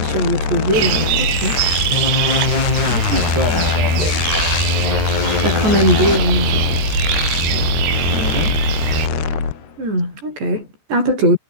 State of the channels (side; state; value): left; late; 14 ms